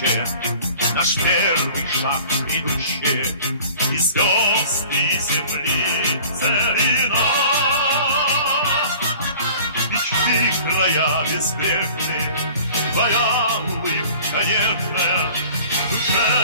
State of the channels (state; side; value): inverted; both; correlation -0.47